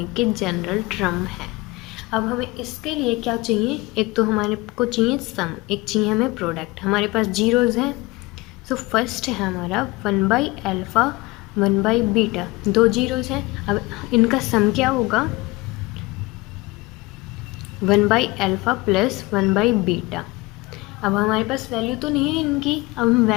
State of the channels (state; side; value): quieter; right; 21.9 dB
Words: के जनरल टर्म है। अब हमें इसके लिए क्या चाहिए? एक तो हमारे को चाहिए सम, एक चाहिए हमें प्रोडक्ट। हमारे पास जीरोज़ हैं। सो फर्स्ट है हमारा 1 बाई अल्फ़ा 1 बाई बीटा, दो जीरोज़ हैं। अब इनका सम क्या होगा? 1 by alpha plus 1 by beta. अब हमारे पास वैल्यू तो नहीं है इनकी, अब हम